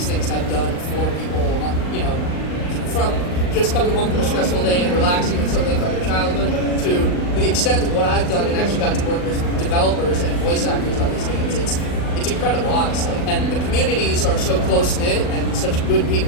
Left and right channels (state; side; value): late; right; 39 ms